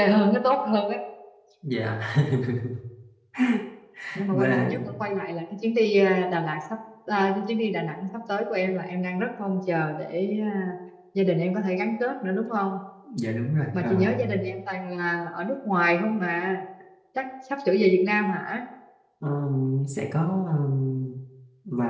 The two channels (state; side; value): identical; both; correlation 1.00